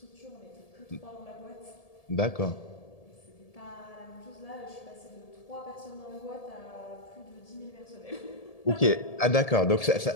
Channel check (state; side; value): late; right; 1.7 ms